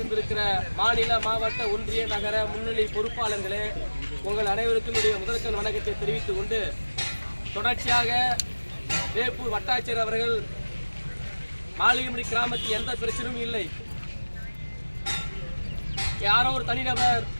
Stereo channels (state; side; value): inverted; both; correlation -1.00